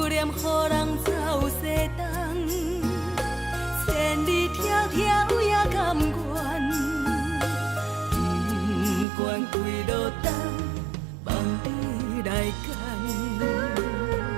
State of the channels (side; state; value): left; drops out; at 9.1 s